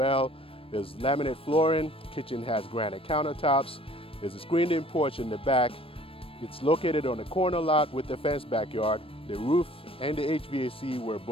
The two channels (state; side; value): late; right; 0.27 ms